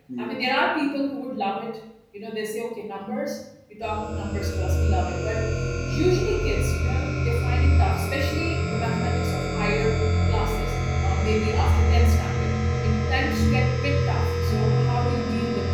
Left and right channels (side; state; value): both; identical; correlation 1.00